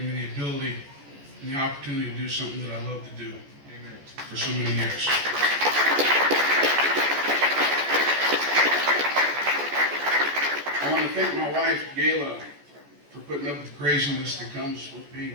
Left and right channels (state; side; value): late; left; 14 ms